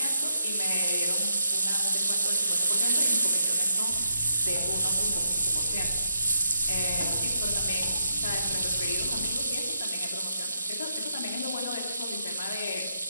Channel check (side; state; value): both; inverted; correlation -0.78